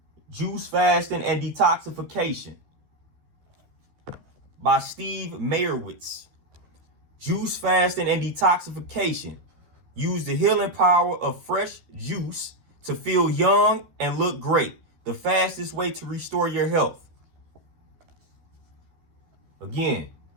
Juice Fasting and Detoxification by Steve Meyerowitz. Juice Fasting and Detoxification. Use the healing power of fresh juice to feel young and look great. The fastest way to restore your health. Again,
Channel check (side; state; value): left; late; 13 ms